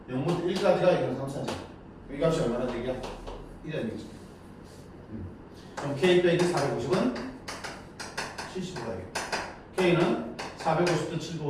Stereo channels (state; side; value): identical; both; correlation 1.00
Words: 0부터 1까지가 0.34죠. 이 값이 얼마나 되냐? 이라는 얘기죠. 그럼 K 빼기 450은 75가 되겠다. K는 450도